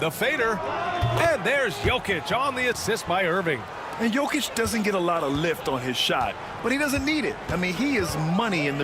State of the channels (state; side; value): identical; both; correlation 1.00